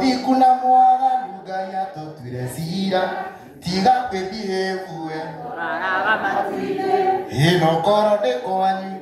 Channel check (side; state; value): both; identical; correlation 1.00